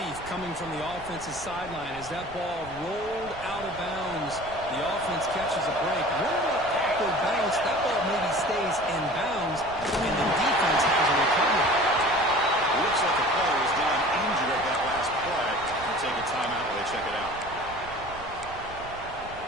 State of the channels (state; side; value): noise; right; rumble, 17 dB below the sound